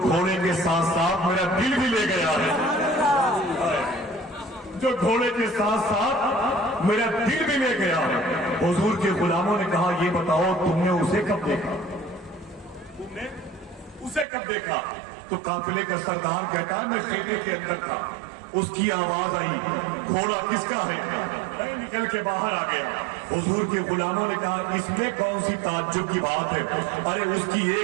के साथ साथ मेरा दिल भी ले गया है? जो घोड़े के साथ साथ मेरा दिल भी ले गया है। हुजूर के गुलामों ने कहा ये बताओ तुमने उसे कब देखा? तुमने उसे कब देखा? तो काफिले का सरदार कहता है मैं खेमे के अंदर था, उसकी आवाज आई घोड़ा किसका है? मैं निकल के बाहर आ गया। हुजूर के गुलामों ने कहा इसमें कौन सी ताज्जुब की बात है? अरे उसकी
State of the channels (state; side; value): drops out; left; at 14.2 s